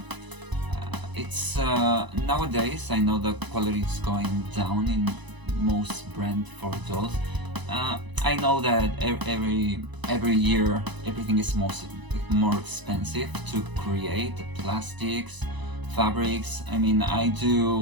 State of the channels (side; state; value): left; late; 1.0 ms